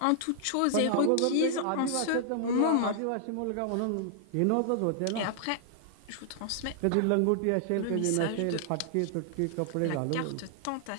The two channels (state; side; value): different; both; correlation -0.01